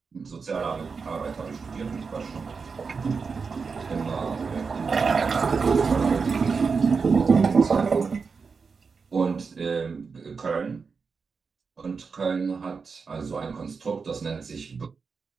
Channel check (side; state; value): left; quieter; 5.1 dB